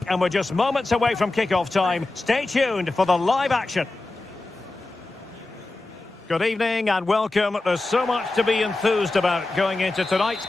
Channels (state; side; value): quieter; right; 3.0 dB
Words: and we're just moments away from kickoff time. Stay tuned for the live action. Good evening and welcome. There's so much to be enthused about going into tonight's